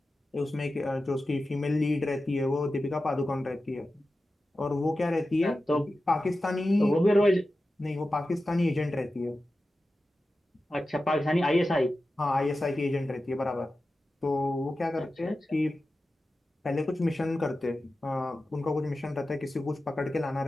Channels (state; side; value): normal; both; correlation 0.93